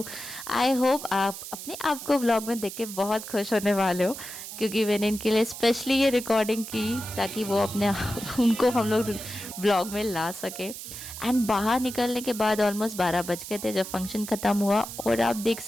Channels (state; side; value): noise; right; hiss, 10 dB below the sound